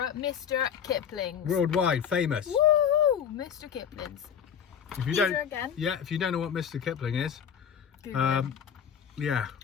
Mr. Kipling's. Worldwide famous. Woo! Mr. Kipling's. If you These don't, are again. yeah, if you don't know what Mr. Kipling is, Google it. yeah,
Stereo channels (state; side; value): quieter; right; 8.1 dB